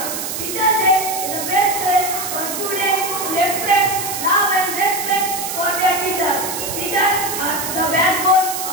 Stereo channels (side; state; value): right; noise; hiss, 5 dB below the sound